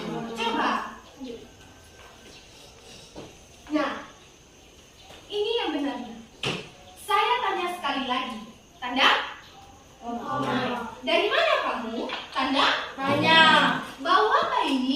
coba. Nah, ini yang benarnya. Saya tanya sekali lagi. Tanda? Dari mana kamu? Tanda? Tanya. Bau apa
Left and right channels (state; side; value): identical; both; correlation 1.00